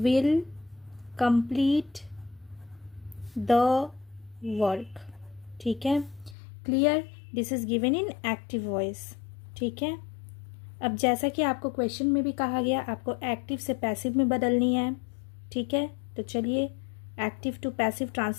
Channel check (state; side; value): drops out; right; at 6.4 s